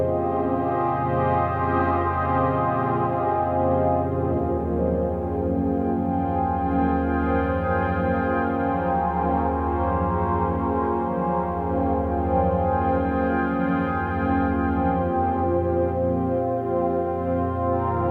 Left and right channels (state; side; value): identical; both; correlation 1.00